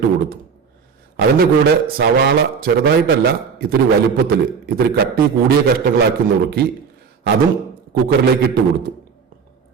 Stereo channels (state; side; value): quieter; left; 6.1 dB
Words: കൊടുത്തു. അതിന്റെ കൂടെ സവാള ചെറുതായിട്ടല്ല, ഇത്തിരി വലുപ്പത്തിൽ ഇത്തിരി കട്ടി കൂടിയ കഷ്ണങ്ങളാക്കി നുറുക്കി അതും കുക്കറിലേക്ക് ഇട്ട് കൊടുത്തു.